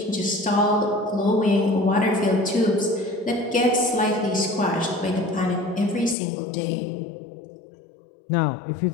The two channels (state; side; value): drops out; right; at 6.2 s